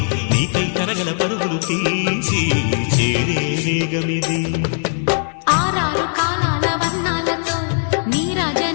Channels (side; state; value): right; silent; 62 dB below the other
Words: నీకై తరగల పరుగులు తీసి చేరే వేగమిది. ఆరారు కాలాల వర్ణాలతో